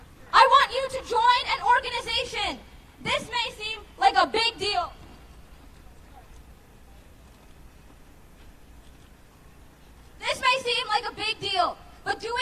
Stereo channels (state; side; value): identical; both; correlation 1.00